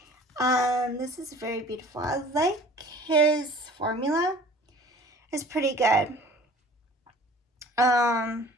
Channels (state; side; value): normal; both; correlation 0.47